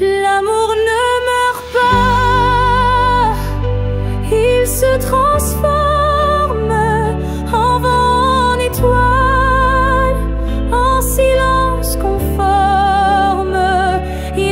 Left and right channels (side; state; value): both; identical; correlation 1.00